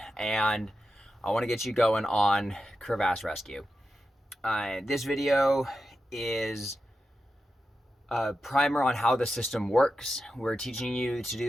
and I want to get you going on crevasse rescue. This video is a primer on how the system works. We're teaching you to do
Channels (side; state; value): both; normal; correlation 0.90